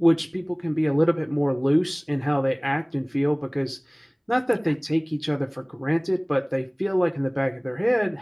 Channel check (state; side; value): identical; both; correlation 1.00